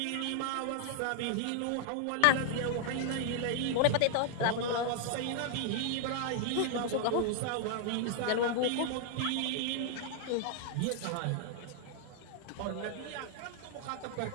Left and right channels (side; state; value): both; different; correlation 0.00